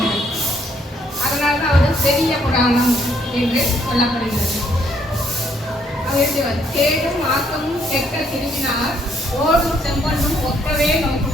அதனால தான் அவர் பெரிய புராணம் என்று சொல்லப்படுகிறது. அவர் தேடும் ஆக்கமும் கெட்ட திரும்பினார் ஓடும் செம்பொன்னும் ஒக்கவே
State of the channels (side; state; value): both; normal; correlation 0.69